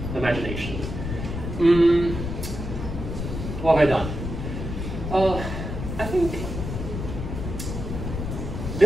imagination. What have I done? I think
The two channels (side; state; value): left; noise; rumble, 5 dB below the sound